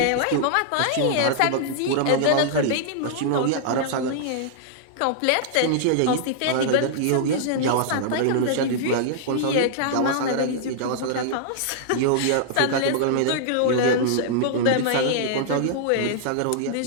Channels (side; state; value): both; different; correlation -0.01